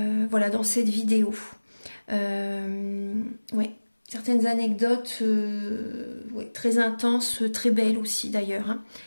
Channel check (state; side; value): inverted; both; correlation -1.00